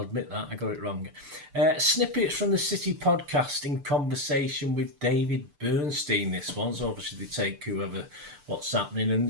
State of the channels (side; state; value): left; late; 6.8 ms